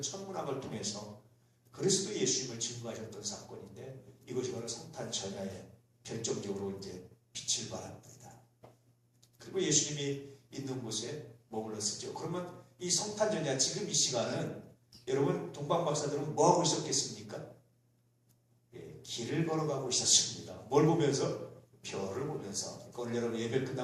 천문학을 통해서 그리스도 예수님을 증거하셨던 사건인데, 이것이 바로 성탄 전야에 결정적으로 이제 빛을 발합니다. 그리고 예수님이 있는 곳에 머물렀었죠. 그러면 이 성탄 전야, 지금 이 시간은 여러분 동방박사들은 뭐 하고 있었겠습니까? 길을 걸어가고 있었습니다. 뭘 보면서? 별을 보면서. 그러니까 오늘 여러분 예배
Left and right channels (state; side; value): identical; both; correlation 1.00